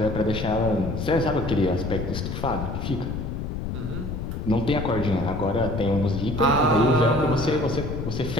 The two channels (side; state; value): left; noise; rumble, 5 dB below the sound